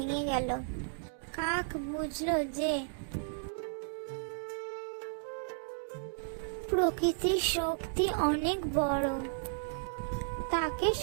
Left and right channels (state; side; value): silent; left; digital silence